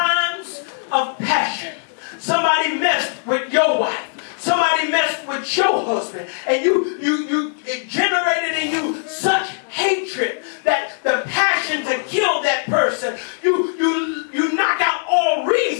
of passion. husband, and it generated in you such hatred that the passion to kill that person, you knock out all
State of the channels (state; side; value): silent; right; digital silence